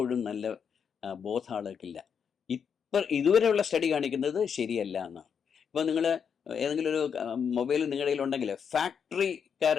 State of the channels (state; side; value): quieter; right; 7.1 dB